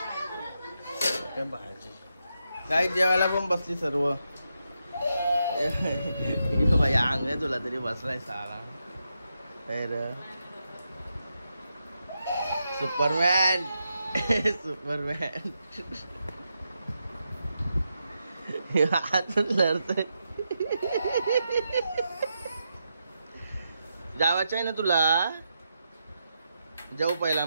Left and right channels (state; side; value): inverted; both; correlation -0.85